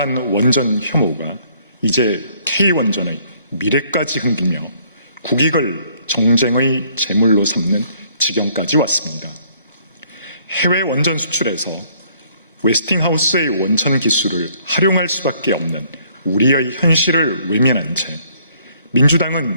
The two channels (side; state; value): both; inverted; correlation -0.63